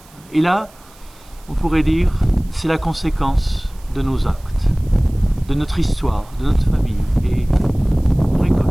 Et là, on pourrait dire, c'est la conséquence de nos actes, de notre histoire, de notre famille. Et on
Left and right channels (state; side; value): noise; right; hiss, 27 dB below the sound